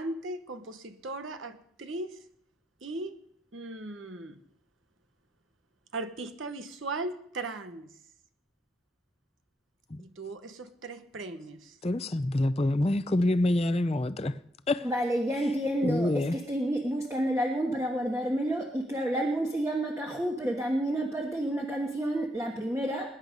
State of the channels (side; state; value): both; normal; correlation 0.79